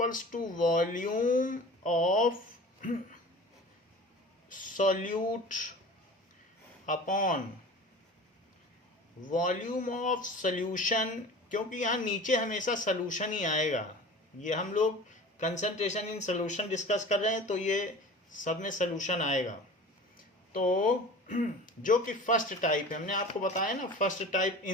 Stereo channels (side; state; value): both; normal; correlation 0.39